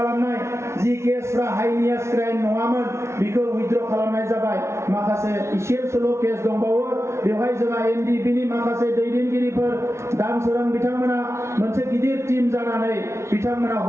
जि केसफ्रा हाइनियास क्राइम नङामोन बेखौ उइथड्र खालामनाय जाबाय। माखासे इसेल' केस दंबावो, बेवहाय जोंहा NDP-नि माखासे दैदेनगिरिफोर दानसोरां बिथांमोना मोनसे गिदिर टीम जानानै बिथांमोना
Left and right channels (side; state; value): left; late; 0.13 ms